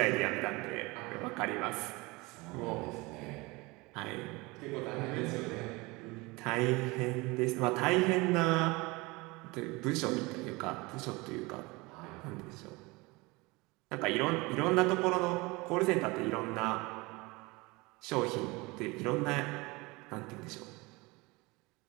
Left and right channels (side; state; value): left; quieter; 24.1 dB